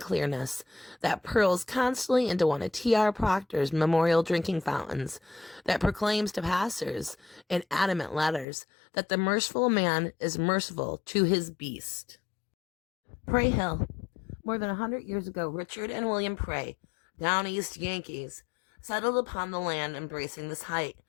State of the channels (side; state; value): right; drops out; at 8.5 s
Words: that purls constantly into one of T.R. Proctor's memorial drinking fountains, that proclaims to passers in adamant letters that the merciful man is merciful to his beast. Prey Hill. More than 100 years ago, Richard and William Prey, down east Yankees, settled upon the land embracing this height,